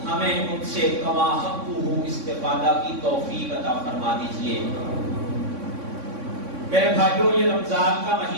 ہمیں ان سے کما حقہ استفادہ کی توفیق عطا فرما دیجیے۔ میرے بھائیوں، یہ رمضان کا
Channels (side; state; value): left; late; 3.6 ms